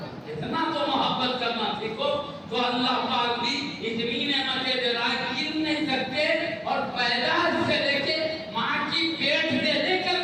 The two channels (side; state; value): both; identical; correlation 1.00